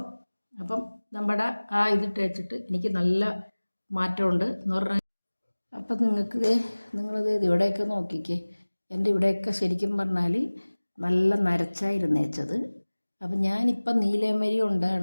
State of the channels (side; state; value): both; inverted; correlation -1.00